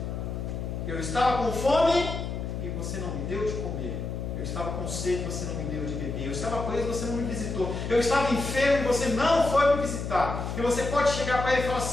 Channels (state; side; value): noise; left; hum, 5 dB below the sound